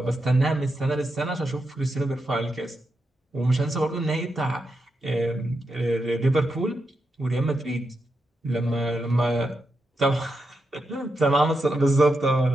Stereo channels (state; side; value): normal; both; correlation 0.86